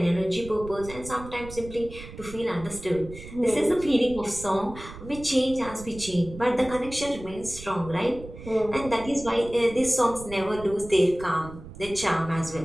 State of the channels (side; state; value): right; noise; rumble, 14 dB below the sound